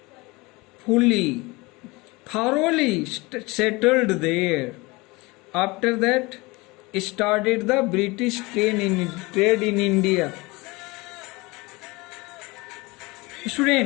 thoroughly settled there. After that, started the British trade in India.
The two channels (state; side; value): quieter; right; 23.8 dB